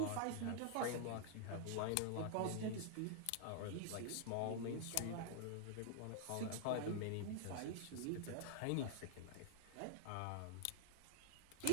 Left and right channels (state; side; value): different; both; correlation 0.00